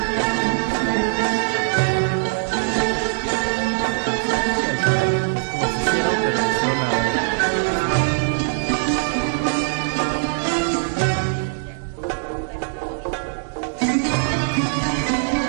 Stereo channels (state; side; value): silent; left; digital silence